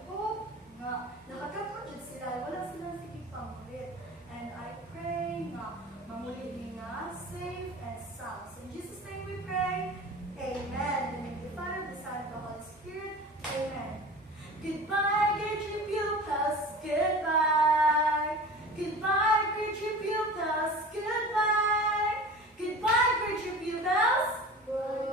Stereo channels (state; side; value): normal; both; correlation 0.36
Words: hope nga nakatapos sila, wala silang sige pangulit.